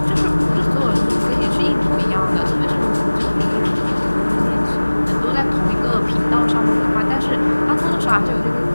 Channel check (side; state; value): both; inverted; correlation -1.00